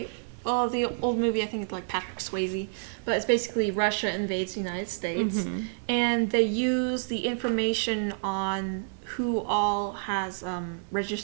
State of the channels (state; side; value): silent; left; 58 dB below the other